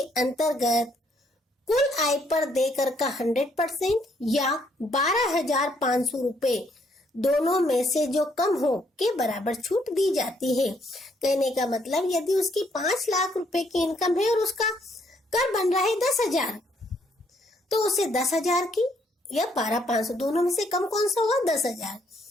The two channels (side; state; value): both; normal; correlation 0.70